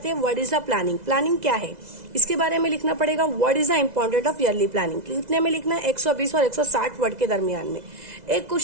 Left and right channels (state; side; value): late; left; 2.0 ms